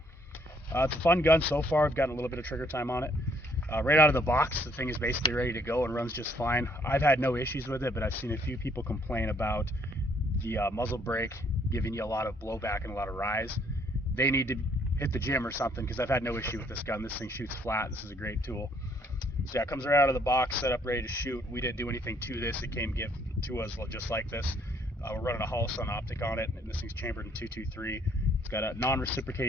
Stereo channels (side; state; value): both; normal; correlation 0.66